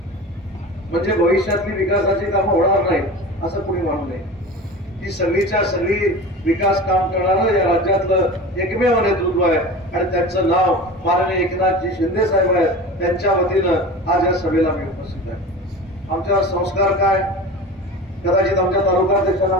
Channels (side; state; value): both; normal; correlation 0.33